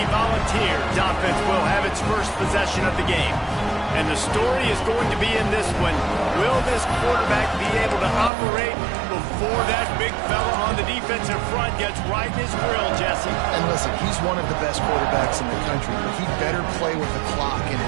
Volunteers offense will have its first possession of the game. And the story is going to be in this one. Will this quarterback be able to operate before that big fella on the defensive front gets right in his grill, Jesse? And listen, he's one of the best quarterbacks in the country, but he better play with the clock in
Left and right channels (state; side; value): drops out; left; at 8.3 s